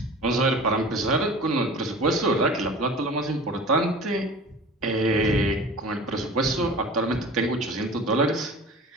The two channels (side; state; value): both; normal; correlation 0.39